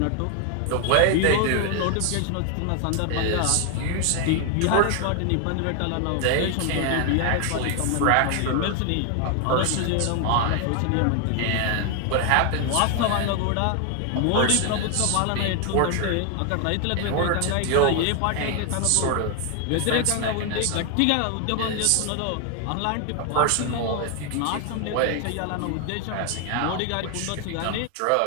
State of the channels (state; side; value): different; both; correlation 0.00